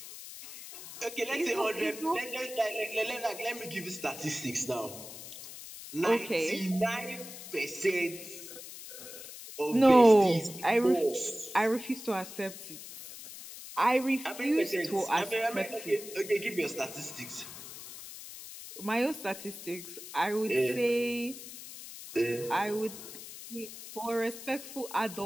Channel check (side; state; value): left; noise; hiss, 13 dB below the sound